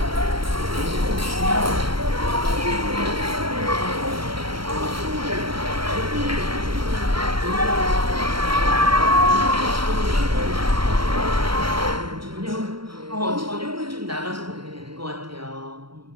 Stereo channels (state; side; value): late; left; 0.74 ms